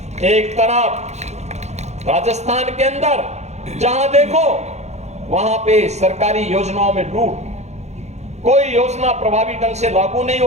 एक तरफ राजस्थान के अंदर जहां देखो वहां पे सरकारी योजनाओं में लूट, कोई योजना प्रभावी ढंग से लागू नहीं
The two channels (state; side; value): late; left; 0.32 ms